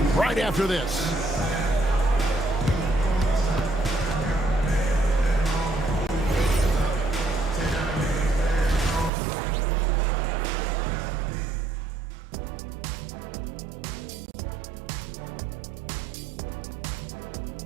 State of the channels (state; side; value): drops out; left; at 9.1 s